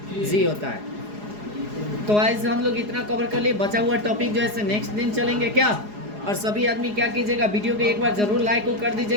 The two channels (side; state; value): left; late; 4.8 ms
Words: होता है। तो ऐसे हम लोग इतना कवर कर लिए। बचा हुआ टॉपिक जो है नेक्स्ट दिन चलेंगे क्या। और सभी आदमी क्या कीजिएगा, वीडियो को एक बार जरूर लाइक को कर